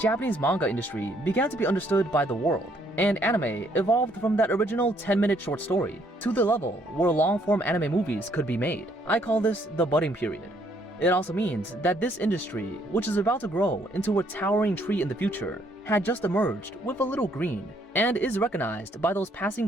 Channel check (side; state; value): both; normal; correlation 0.68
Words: Japanese manga industry began to be understood by the world, and anime evolved from that original 10-minute short story to the level where long-form anime movies could be made. I call this the budding period. It also means that this industry, which is about to grow into a towering tree in the future, had just emerged with a little green and is recognized by those passing